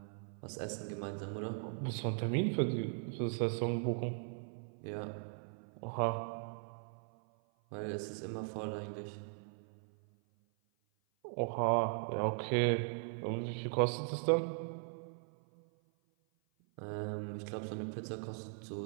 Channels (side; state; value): left; silent; 52 dB below the other